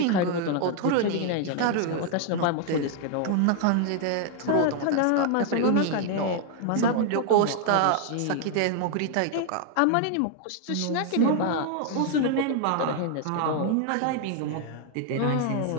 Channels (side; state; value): both; different; correlation 0.00